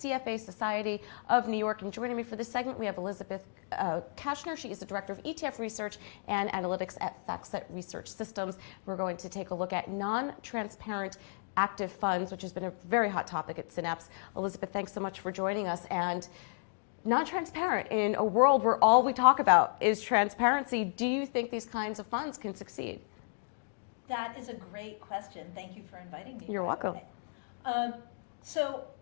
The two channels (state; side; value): silent; right; digital silence